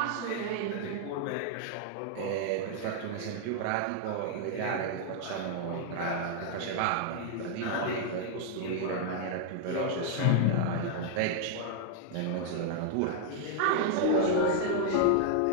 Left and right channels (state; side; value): different; both; correlation 0.00